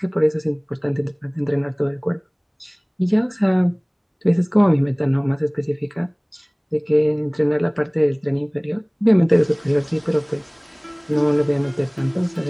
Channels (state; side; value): identical; both; correlation 1.00